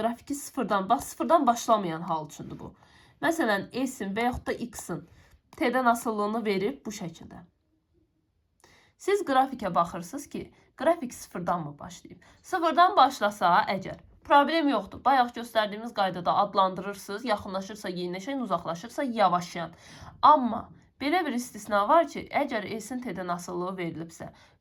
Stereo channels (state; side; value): identical; both; correlation 1.00